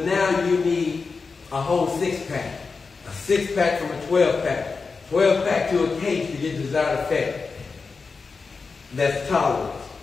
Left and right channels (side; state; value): right; quieter; 4.6 dB